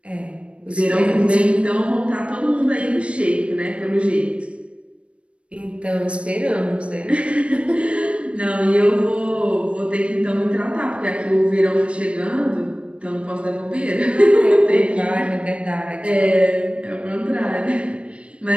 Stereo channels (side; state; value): left; late; 0.060 ms